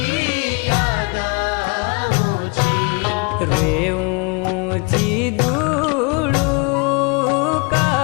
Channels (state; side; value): quieter; right; 31.0 dB